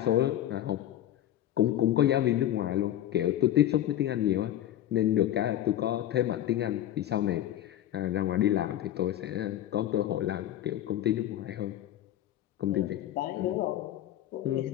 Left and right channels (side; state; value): right; quieter; 12.4 dB